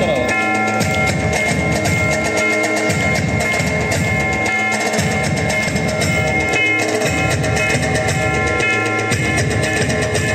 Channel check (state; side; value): identical; both; correlation 1.00